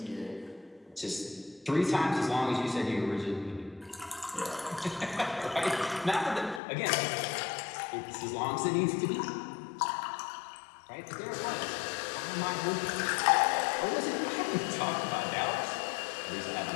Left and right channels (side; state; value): right; drops out; at 6.6 s